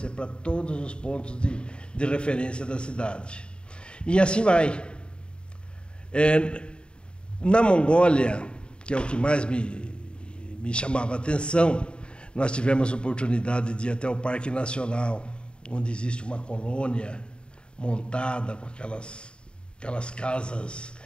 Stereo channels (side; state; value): right; late; 0.052 ms